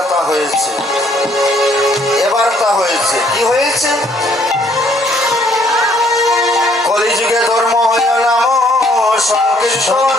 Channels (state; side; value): normal; both; correlation 0.65